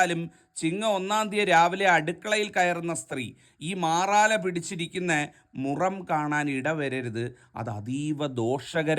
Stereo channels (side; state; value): both; identical; correlation 1.00